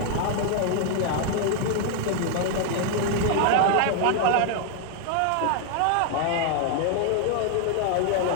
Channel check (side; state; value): both; different; correlation 0.00